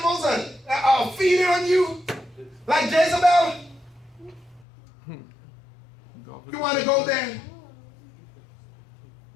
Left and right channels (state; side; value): drops out; right; at 4.7 s